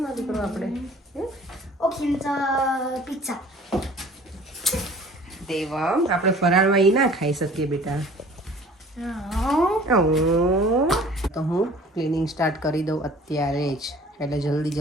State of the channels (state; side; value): normal; both; correlation 0.49